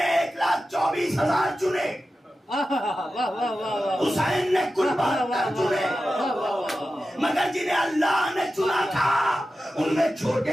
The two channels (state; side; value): normal; both; correlation 0.93